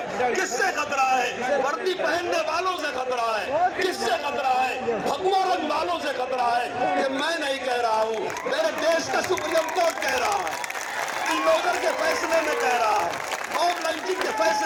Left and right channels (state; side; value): identical; both; correlation 1.00